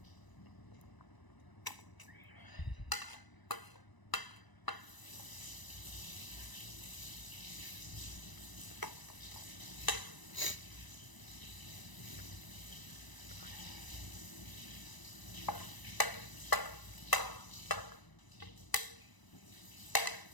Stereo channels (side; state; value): right; late; 1.0 ms